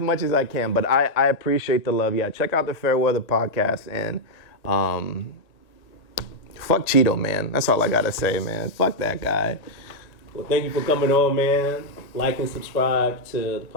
as I can, but I appreciate the love. Yeah, check out the Fairweather Podcast, and fuck Cheeto, man. That's all I gotta say, man. Fuck that guy. Well, thank you for coming on, man. Like and subscribe to the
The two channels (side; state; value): right; late; 1.8 ms